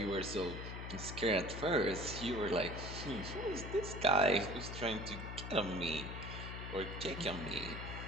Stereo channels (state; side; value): noise; left; hum, 7 dB below the sound